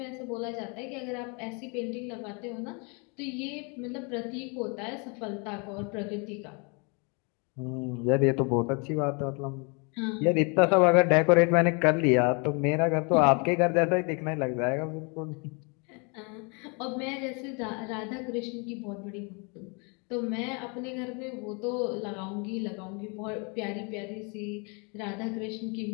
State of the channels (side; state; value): right; quieter; 33.1 dB